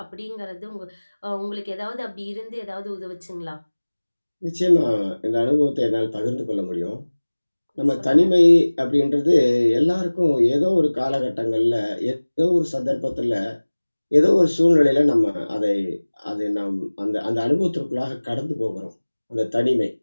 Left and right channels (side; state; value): both; inverted; correlation -1.00